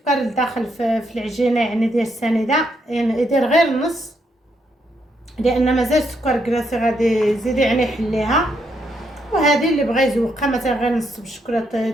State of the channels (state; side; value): normal; both; correlation 0.77